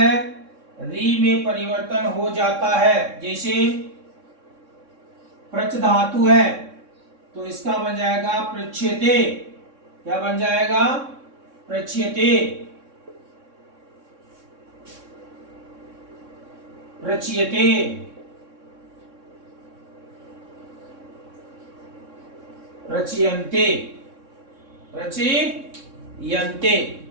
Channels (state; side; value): late; left; 3.6 ms